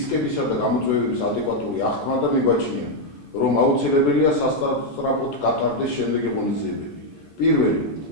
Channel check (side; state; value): both; normal; correlation 0.01